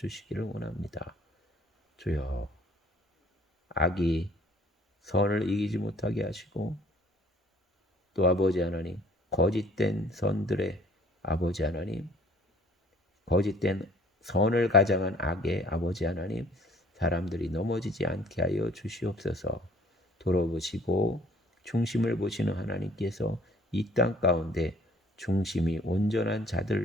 원합니다. 주여 악이 선을 이기지 못하게 하시고 또 아버지 하나님 거짓된 선들의 아버지 하나님 거짓된 선을 가장한 악의 아버지 하나님 사람들이 넘어지지 않게 하여 주시옵소서. 돌아보시고 중심을 보시는 하나님께서 이 땅 가운데 중심이 온전한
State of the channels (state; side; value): normal; both; correlation 0.56